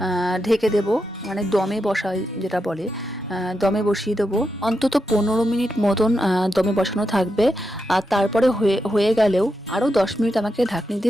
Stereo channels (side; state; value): both; normal; correlation 0.86